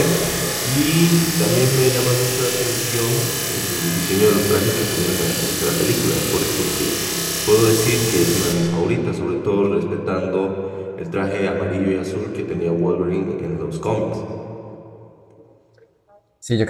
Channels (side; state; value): both; identical; correlation 1.00